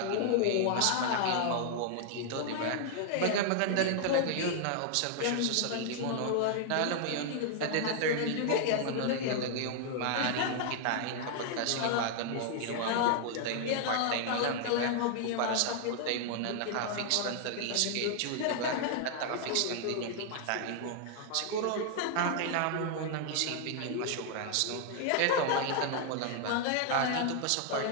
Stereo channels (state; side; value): different; both; correlation 0.00